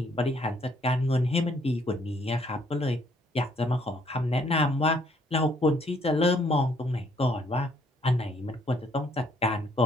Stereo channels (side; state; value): both; normal; correlation 0.66